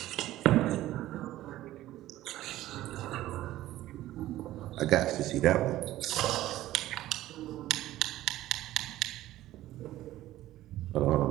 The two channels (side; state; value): left; quieter; 15.0 dB